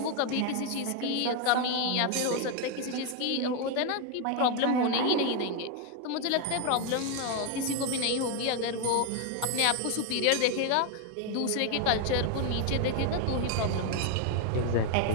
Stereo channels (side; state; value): both; different; correlation 0.01